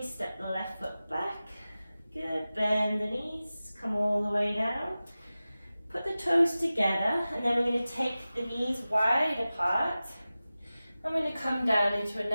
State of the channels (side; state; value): both; inverted; correlation -0.96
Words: step the left foot back. Good, bend the knees, come all the way down. Put the toes together, and then we're going to take the knees wide apart. I'm going to come down into a